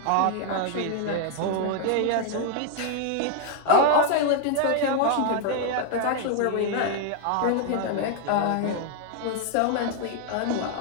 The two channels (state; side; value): different; both; correlation 0.00